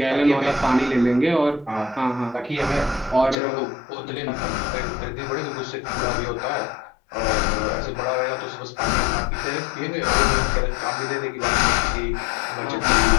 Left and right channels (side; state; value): right; drops out; at 3.4 s